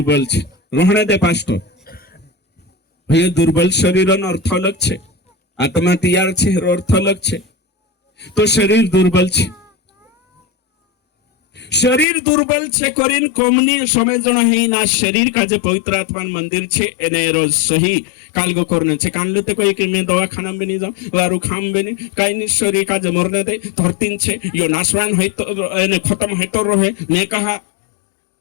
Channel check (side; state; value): right; drops out; at 12.1 s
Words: छे रोहणे दे पास्टर भई दुर्बल शरीर नो अर्थ अलग छे आत्मा तैयार छे अर्थ अलग छे तो शरीर दुर्बल छे। शरीर दुर्बल छे करीन कोमनी समझना है ना शरीर का जे पवित्र आत्मा मंदिर छे एने रोज सही कालगो करने छे। कान लेते कोई कि मैं दवाखाना में नहीं जाऊं वारू खाम में नहीं काई नहीं शरीर का जे मरने दे धरतीन छे यो नाशवान है तो एने खत्म है तो रहे ने कहा